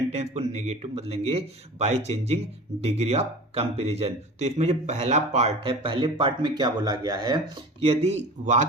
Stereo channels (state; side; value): normal; both; correlation 0.37